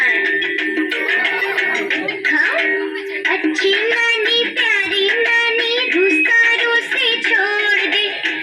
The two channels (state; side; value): identical; both; correlation 1.00